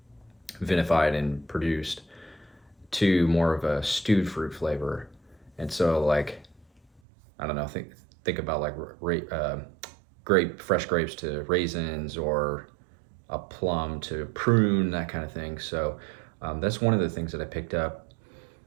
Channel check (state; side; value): drops out; left; at 7.0 s